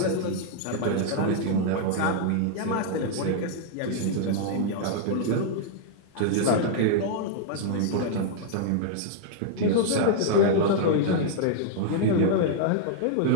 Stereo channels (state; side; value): different; both; correlation -0.01